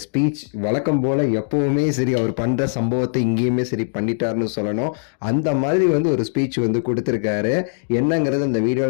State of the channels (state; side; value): silent; right; digital silence